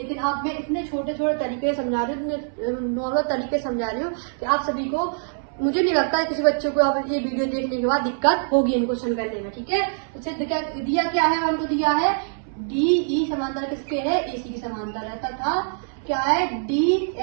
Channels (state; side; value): silent; left; 61 dB below the other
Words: आप मैं इतने छोटे छोटे तरीके समझा रही हूँ, इतने नॉर्मल तरीके समझा रही हूँ कि आप सभी को, मुझे नहीं लगता है किसी बच्चों को अब ये वीडियो देखने के बाद दिक्कत होगी इन क्वेश्चन करने में। ठीक है, तो सिद्ध क्या दिया, क्या है हमको दिया है, DE समांतर किसके है, AC के समांतर है, तथा क्या है,